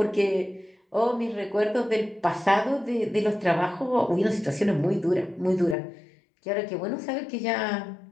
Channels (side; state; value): right; drops out; at 5.8 s